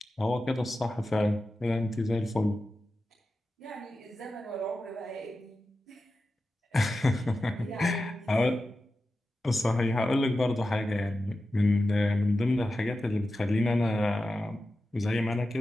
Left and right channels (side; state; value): both; normal; correlation 0.92